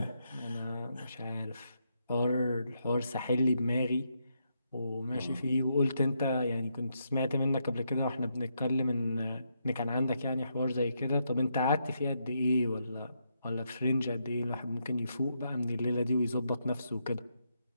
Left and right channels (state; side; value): inverted; both; correlation -0.80